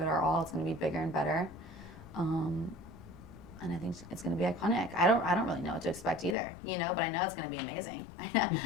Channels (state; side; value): drops out; right; at 6.4 s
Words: it our all. It's going to be bigger and better. And I think it's going to be iconic. I don't really know what to expect either, you know, but I know it's going to be amazing.